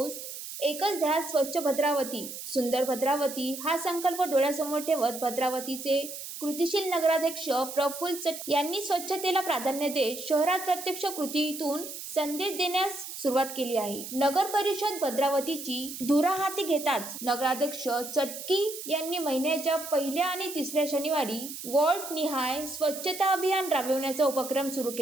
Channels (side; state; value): right; noise; hiss, 9 dB below the sound